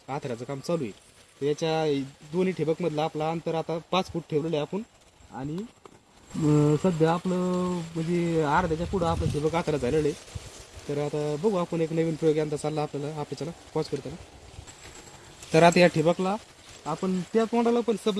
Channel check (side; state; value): both; identical; correlation 1.00